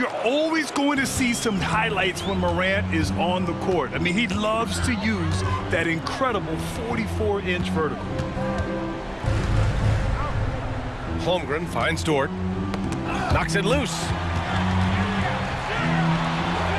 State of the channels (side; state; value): both; identical; correlation 1.00